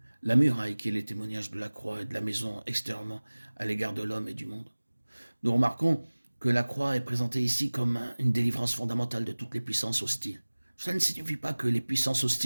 la muraille qui est le témoignage de la croix et de la maison extérieurement à l'égard de l'homme et du monde. Nous remarquons que la croix est présentée ici comme une délivrance fondamentale de toutes les puissances hostiles. Cela ne signifie pas que les puissances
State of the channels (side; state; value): both; inverted; correlation -1.00